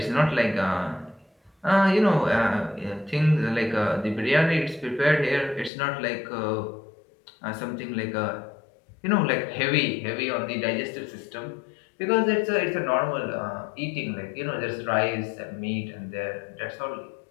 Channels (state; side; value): drops out; right; at 5.7 s